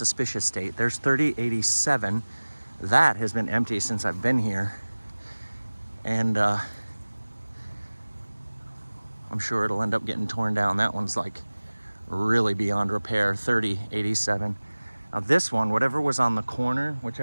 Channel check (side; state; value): both; inverted; correlation -1.00